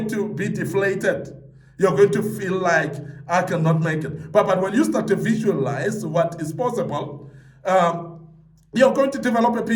to be deflated. You're going to feel like I cannot make it. But when you start to visualize what is possible, you're going to develop a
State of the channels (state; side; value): identical; both; correlation 1.00